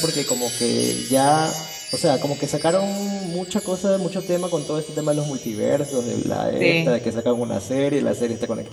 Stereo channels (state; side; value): identical; both; correlation 1.00